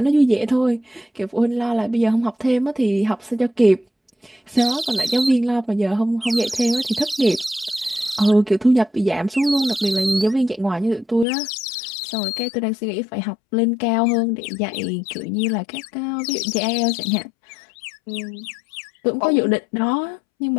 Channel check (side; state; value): right; drops out; at 11.2 s